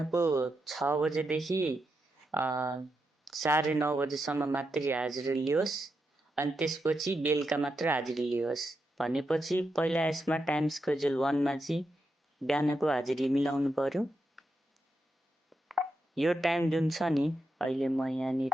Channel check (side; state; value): both; normal; correlation 0.85